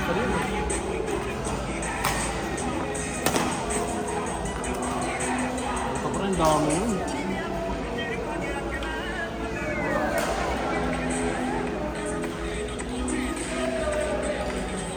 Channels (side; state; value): both; identical; correlation 1.00